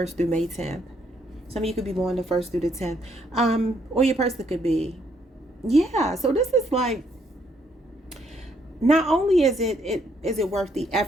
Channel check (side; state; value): both; normal; correlation 0.71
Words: through May 10th. Some of you could be born the 1st through the 10th. Or your person could be. Yeah, so this is like, not only is it worth the